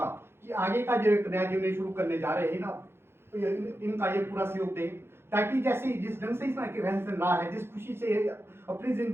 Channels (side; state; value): left; late; 0.12 ms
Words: कि आगे का जो एक नया जीवन शुरू करने जा रहे हैं ना, तो इनका ये पूरा सहयोग दें, ताकि जैसे जिस ढंग से इसमें रहन सहन रहा है, जिस खुशी से अपनी